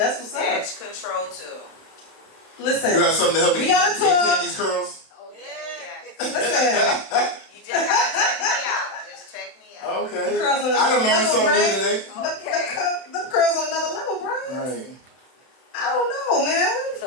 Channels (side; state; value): right; late; 31 ms